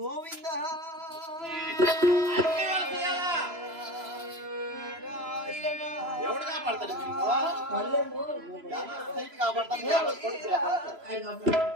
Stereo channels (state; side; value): late; left; 3.0 ms